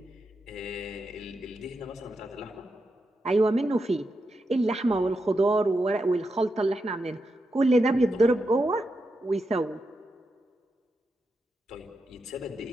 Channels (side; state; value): both; normal; correlation 0.86